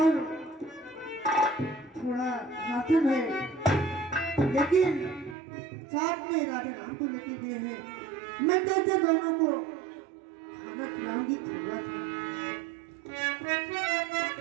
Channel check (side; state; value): left; drops out; at 5.4 s